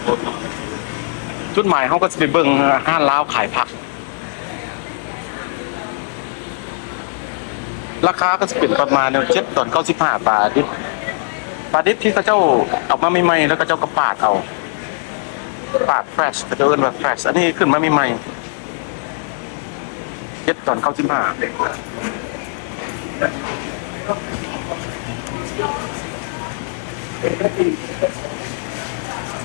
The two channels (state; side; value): silent; right; 64 dB below the other